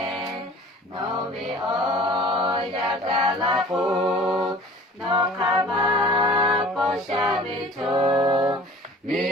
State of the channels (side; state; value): both; normal; correlation 0.46